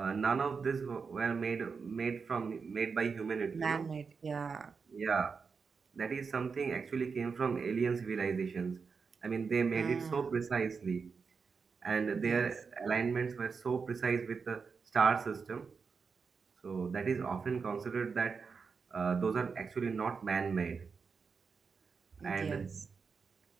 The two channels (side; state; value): left; quieter; 5.3 dB